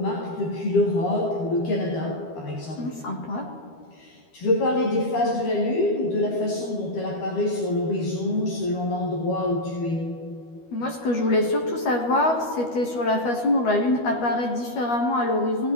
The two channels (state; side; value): late; right; 12 ms